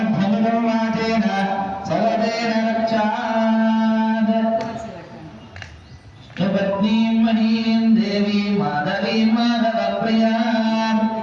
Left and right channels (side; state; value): both; identical; correlation 1.00